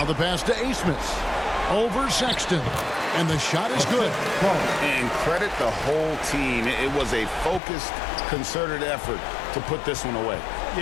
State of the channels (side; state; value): right; drops out; at 7.6 s